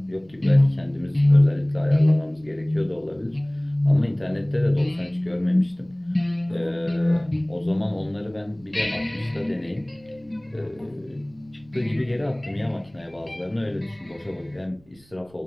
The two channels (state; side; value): noise; right; rumble, 29 dB below the sound